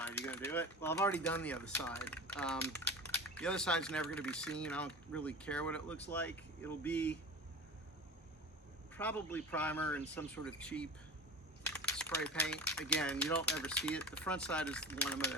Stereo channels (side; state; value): both; normal; correlation 0.32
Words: Are you going to do it? Well, I've already done the other side. The other side's never going to be seen. I don't really care what it looks like. It'll be probably primer and some sort of cheap spray paint. Again, you don't ever see it. The front side is the one I'm going